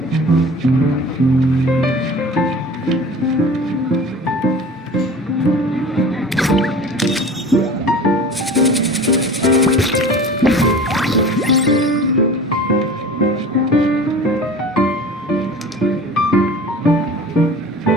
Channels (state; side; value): normal; both; correlation 0.39